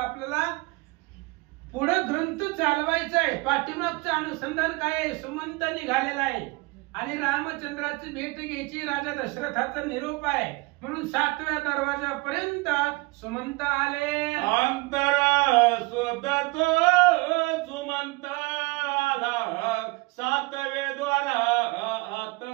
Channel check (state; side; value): quieter; left; 25.4 dB